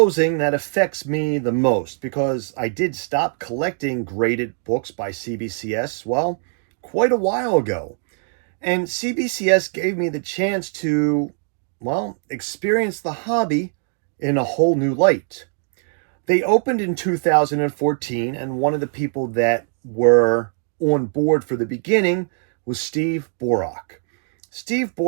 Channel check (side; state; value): left; silent; 56 dB below the other